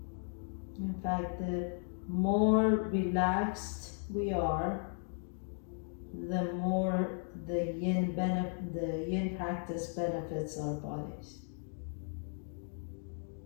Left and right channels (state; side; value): silent; right; 54 dB below the other